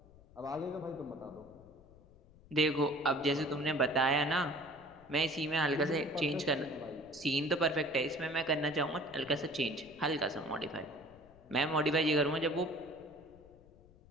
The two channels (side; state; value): left; noise; rumble, 25 dB below the sound